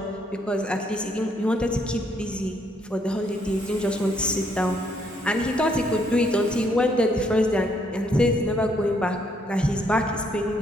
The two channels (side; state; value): both; normal; correlation 0.70